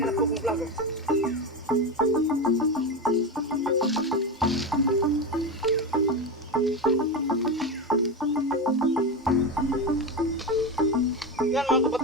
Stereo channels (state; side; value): normal; both; correlation 0.17